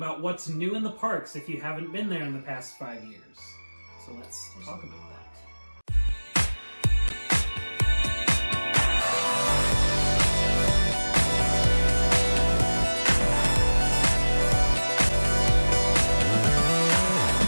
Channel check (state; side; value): inverted; both; correlation -1.00